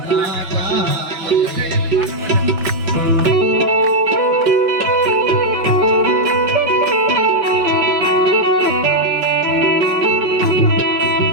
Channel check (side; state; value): left; late; 5.6 ms